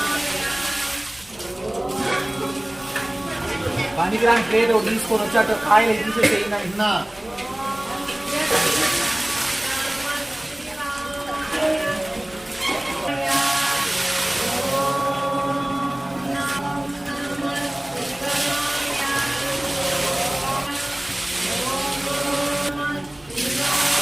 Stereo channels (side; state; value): right; noise; hum, 28 dB below the sound